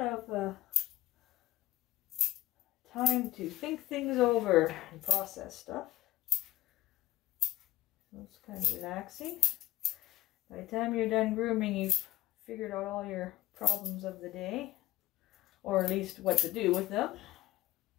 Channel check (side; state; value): right; quieter; 15.5 dB